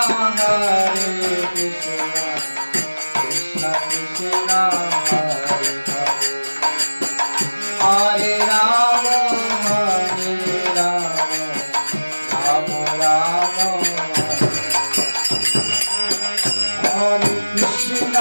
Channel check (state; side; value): inverted; both; correlation -1.00